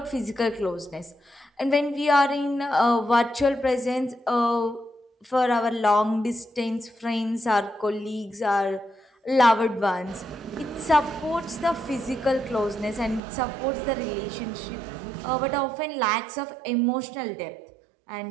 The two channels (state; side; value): drops out; left; at 13.2 s